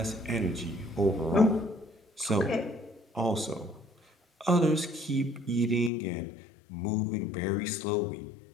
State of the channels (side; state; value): right; drops out; at 5.9 s